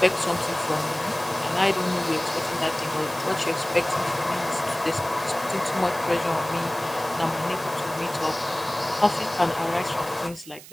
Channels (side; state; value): right; noise; hiss, 17 dB below the sound